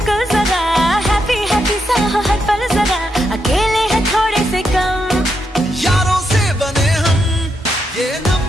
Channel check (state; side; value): normal; both; correlation 0.82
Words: जरा, हैप्पी हैप्पी सा हो हर पल जरा। अकेले हैं थोड़े से कम, यारों से बने हम, ये